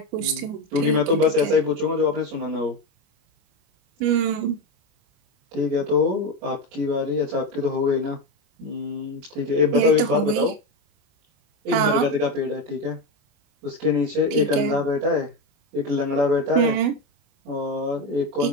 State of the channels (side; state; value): left; late; 26 ms